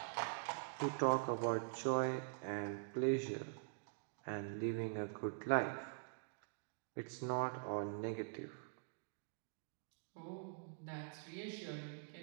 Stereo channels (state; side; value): silent; left; digital silence